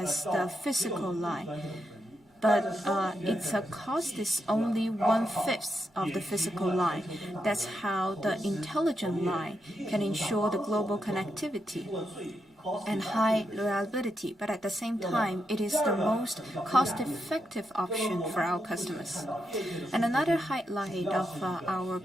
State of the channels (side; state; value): both; normal; correlation 0.83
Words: the physical line. But its cost is only 1/5 of the physical line. That's how the intelligent line can ensure the global connectivity and high reliability, but at the same time, it is the most cost-effective option for our customers. And another highlight of our